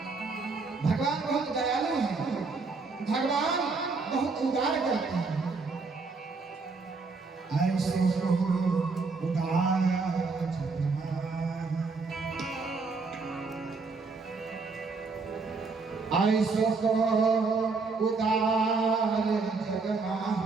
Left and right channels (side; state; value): left; quieter; 4.2 dB